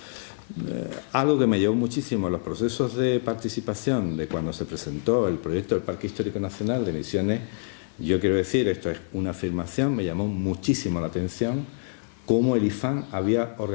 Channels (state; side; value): silent; right; digital silence